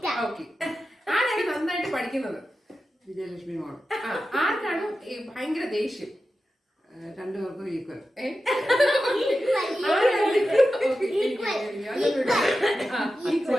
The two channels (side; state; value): both; normal; correlation 0.92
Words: ഓക്കെ. ആരാണ് നന്നായിട്ട് പഠിക്കുന്നത്? വിജയലക്ഷ്മി മോൾ. ആർക്കാണ് ഭയങ്കര ദേഷ്യം? രണ്ടുപേർക്കും ഈക്വൽ.